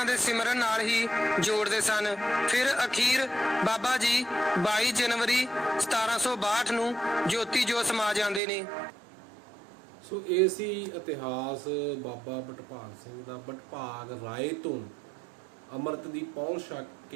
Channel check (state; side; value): drops out; left; at 8.4 s